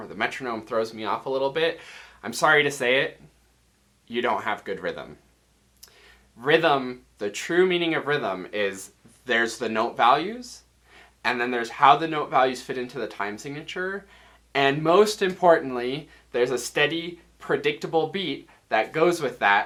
the metronome throws me off a little bit, I'm sorry to say it, you don't have good rhythm. Rhythm, the true meaning of rhythm is there's the note values, and then there's how the note values fit into the time signature, And most importantly, there's a steady, predictable beat that goes with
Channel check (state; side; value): identical; both; correlation 1.00